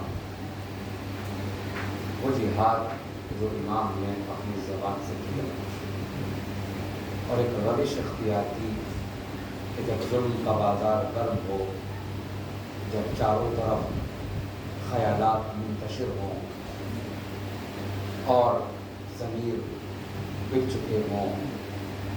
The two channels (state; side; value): identical; both; correlation 1.00